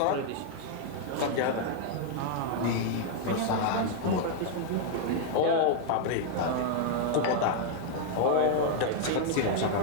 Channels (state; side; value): different; both; correlation 0.00